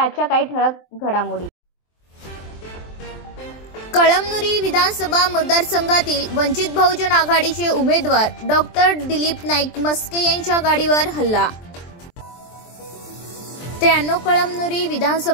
आजच्या काही ठळक घडामोडी. कळमनुरी विधानसभा मतदारसंघातील वंचित बहुजन आघाडीचे उमेदवार डॉक्टर दिलीप नाईक मस्के यांच्या गाडीवर हल्ला. 93 कळमनुरी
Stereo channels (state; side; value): late; right; 23 ms